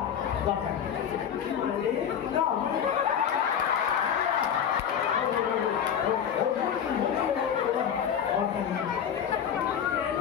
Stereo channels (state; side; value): quieter; right; 8.5 dB